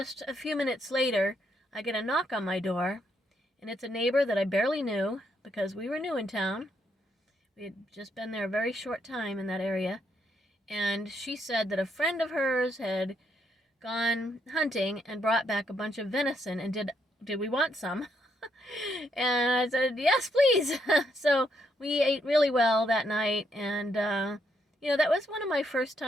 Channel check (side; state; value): both; normal; correlation 0.75